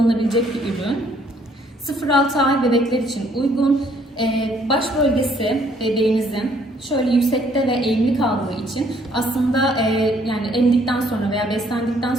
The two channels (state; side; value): normal; both; correlation 0.64